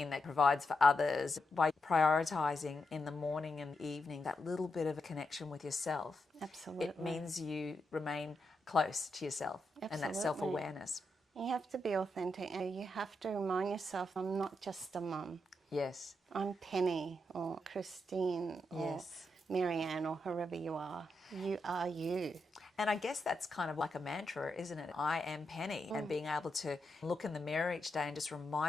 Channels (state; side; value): normal; both; correlation 0.84